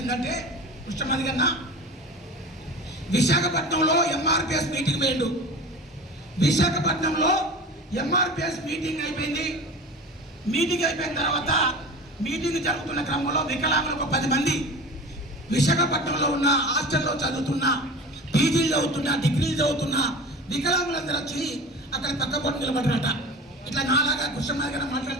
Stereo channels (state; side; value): normal; both; correlation 0.35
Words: కృష్ణమాది గారు విశాఖపట్నంలో ఎంఆర్పిఎస్ మీటింగ్ పోయిండు. విశాఖపట్నంలో ఎంఆర్పిఎస్ మీటింగ్ అయిపోయింది. మీటింగ్ అయిపోయిన తర్వాత మీటింగ్ జరుగుతున్న క్రమంలో వికలాంగులకు 10 మంది విశాఖపట్నంలో ఉన్న హాస్టల్లో చదువుతున్న, పీజీలు చదువుతున్న, డిగ్రీలు చదువుతున్న వికలాంగులందరూ వచ్చి అక్కడ పక్క పొంటి నిలబడ్డారట. ఇట్లా నాలాగా కృష్ణమాది గారు